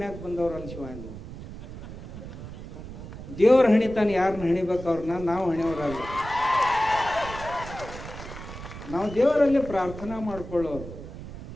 ಬಂದವ್ರು ಅನ್ಸಿವ. ದೇವ್ರ ಹಣಿತಾನೆ, ಯಾರನ್ನ ಹಣಿಬೇಕು ಅವ್ರನ್ನ. ನಾವು ಹಣಿಯವರಲ್ಲ, ನಾವು ದೇವರಲ್ಲಿ ಪ್ರಾರ್ಥನಾ ಮಾಡ್ಕೊಳ್ಳೋರು.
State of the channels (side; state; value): right; noise; rumble, 12 dB below the sound